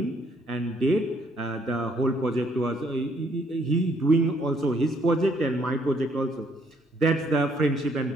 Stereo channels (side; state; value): both; normal; correlation 0.67